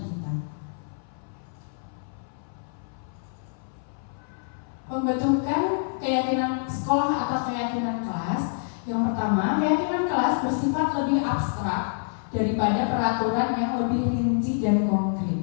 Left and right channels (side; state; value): right; silent; 57 dB below the other